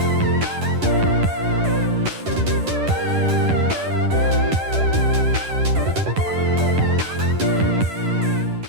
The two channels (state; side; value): late; left; 10 ms